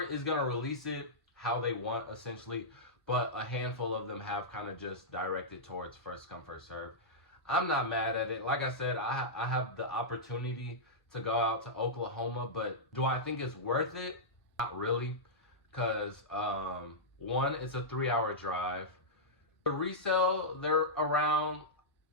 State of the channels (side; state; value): both; normal; correlation -0.11